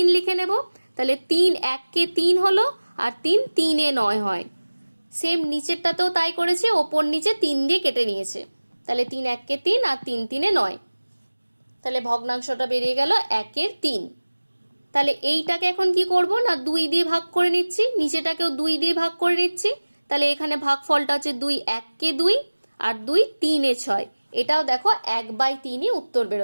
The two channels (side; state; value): both; inverted; correlation -1.00